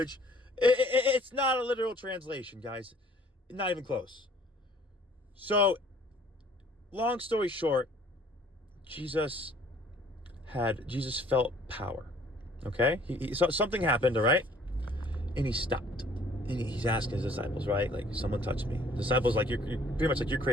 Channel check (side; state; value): both; normal; correlation 0.57